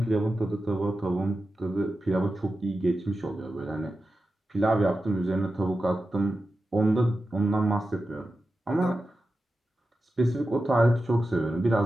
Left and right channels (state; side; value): normal; both; correlation 0.92